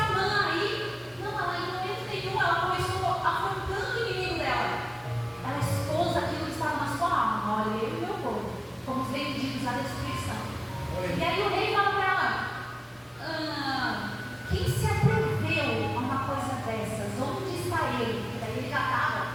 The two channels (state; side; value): identical; both; correlation 1.00